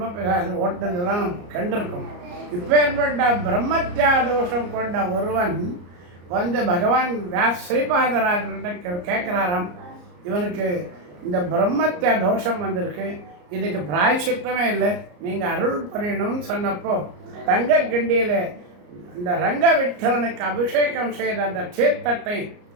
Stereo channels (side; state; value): left; late; 34 ms